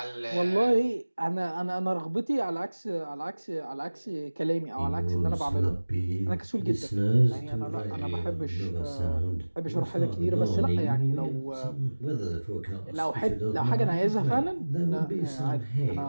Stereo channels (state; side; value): inverted; both; correlation -1.00